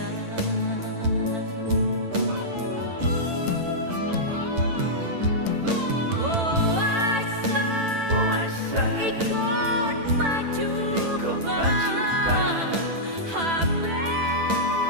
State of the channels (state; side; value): late; left; 9.0 ms